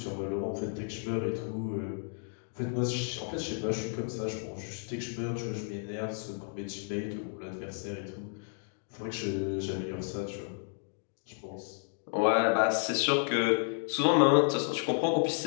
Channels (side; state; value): right; silent; 56 dB below the other